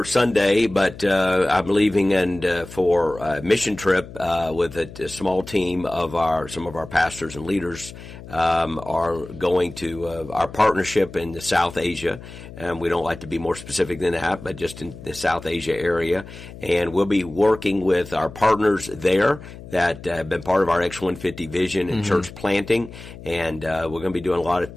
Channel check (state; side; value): noise; left; hum, 15 dB below the sound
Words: Sunday, but I'm leaving for a mission trip with a small team of some of our pastors and leaders are going to our partnership in South Asia. And we don't like to be more specific than that, but just in the South Asia area. And we'll be working with our partners there that have been part of our X150 vision and church planting. And we're going to be doing a lot of